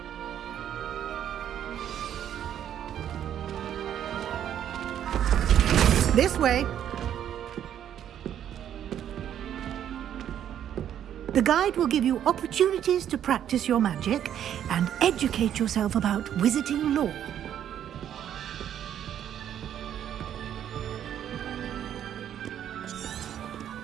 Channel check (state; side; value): quieter; left; 10.1 dB